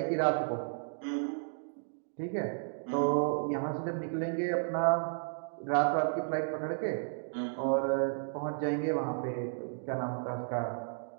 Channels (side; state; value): left; silent; digital silence